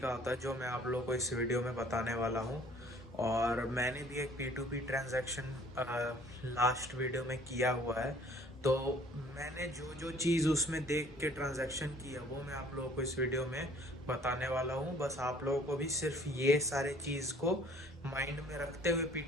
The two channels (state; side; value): normal; both; correlation 0.55